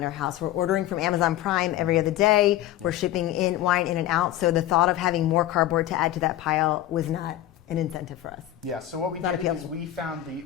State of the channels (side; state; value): right; quieter; 13.3 dB